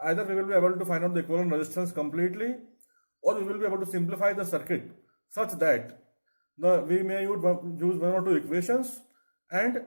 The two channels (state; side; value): inverted; both; correlation -1.00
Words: Either we will be able to find out the equivalent resistance completely, or we will be able to simplify the circuit such that we may use one or two equations and